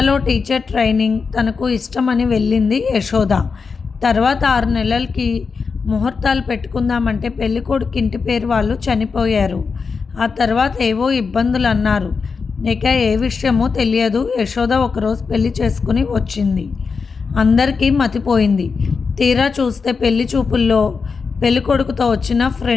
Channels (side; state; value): right; quieter; 5.1 dB